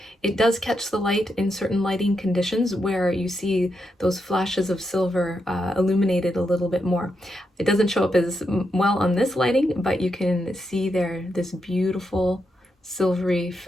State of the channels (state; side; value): normal; both; correlation 0.83